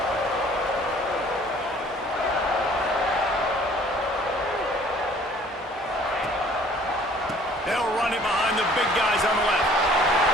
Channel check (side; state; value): both; normal; correlation 0.55